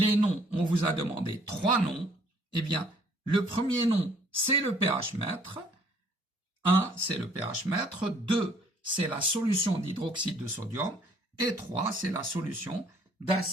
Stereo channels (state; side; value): normal; both; correlation 0.60